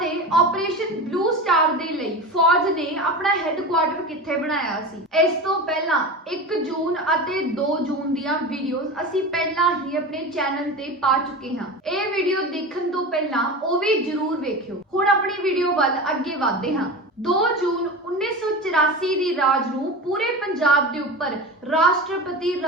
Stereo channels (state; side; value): normal; both; correlation 0.28